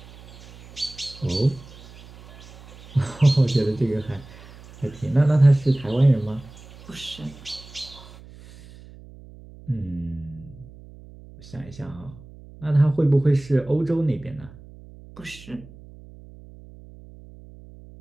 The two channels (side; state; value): right; noise; hum, 20 dB below the sound